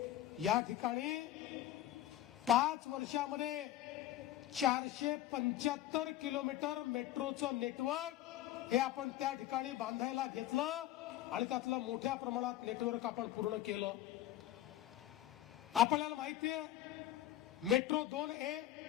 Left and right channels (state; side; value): quieter; right; 13.1 dB